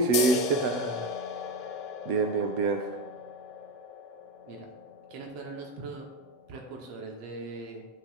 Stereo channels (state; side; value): late; left; 7.0 ms